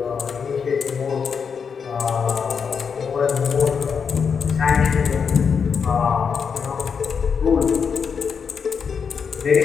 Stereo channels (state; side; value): quieter; right; 6.3 dB